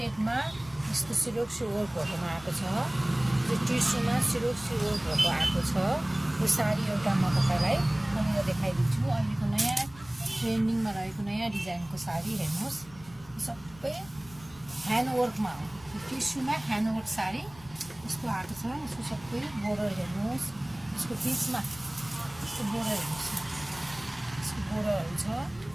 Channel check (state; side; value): noise; left; rumble, 22 dB below the sound